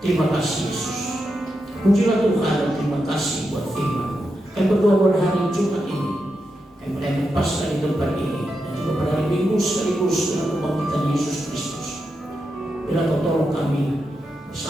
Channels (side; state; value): both; normal; correlation 0.86